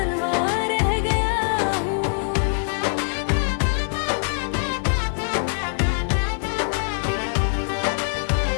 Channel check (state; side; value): silent; right; digital silence